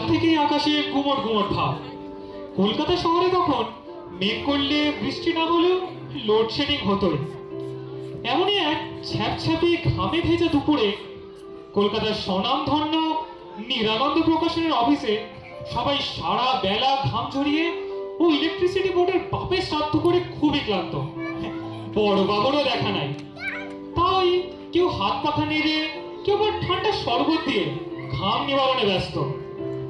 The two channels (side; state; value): both; identical; correlation 1.00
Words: থেকেই আকাশে গুমট গুমট ভাব। কলকাতা শহরে তখন মেঘ করলে বৃষ্টি না হলেও লোডশেডিং হতোই। এমনই এক ছ্যাপছ্যাপে ঘামে ভেজা দুপুরে কলকাতার স্বনামধন্য নিরানন্দ প্রকাশনের অফিসে সবাই সারা বেলা ঘাম ঝরিয়ে ও ইলেকট্রিসিটি বোর্ডের বাপের শ্রাদ্ধ করে খুবই ক্লান্ত। বড় বাবুরও দেখা নাই। তাই কেউ হাত পাখা নেড়ে, কেউ আবার ঠান্ডা শরবত দিয়ে ঘাম নিবারণে ব্যস্ত।